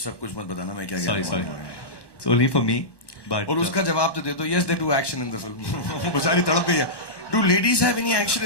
सब कुछ मत बताना मैं क्या कह रहा हूँ. Sorry. It's only for me. But और उसका जवाब तो दे दो. Yes, they do action in the film. बेचारी तड़प गई है. Do ladies have any action?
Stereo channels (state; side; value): late; right; 1.1 ms